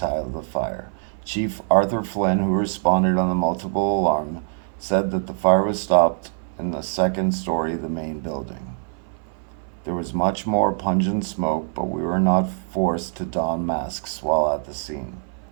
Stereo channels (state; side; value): silent; left; 60 dB below the other